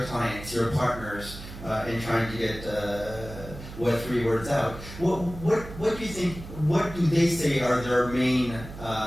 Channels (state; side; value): noise; right; hum, 13 dB below the sound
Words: clients, your partners in trying to get Web3 words out, what do you think? What do they say are their main